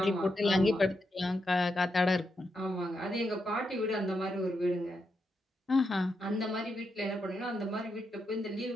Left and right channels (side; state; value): both; normal; correlation 0.84